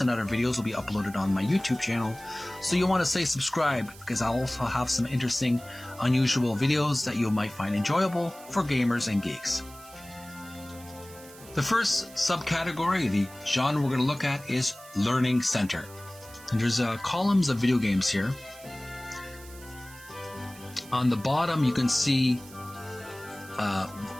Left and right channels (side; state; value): right; noise; hiss, 20 dB below the sound